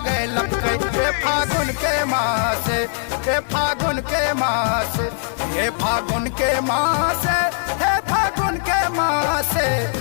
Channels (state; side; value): silent; right; 58 dB below the other